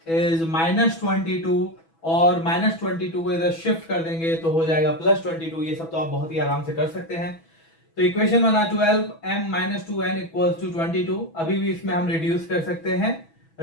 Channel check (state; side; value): late; right; 6.1 ms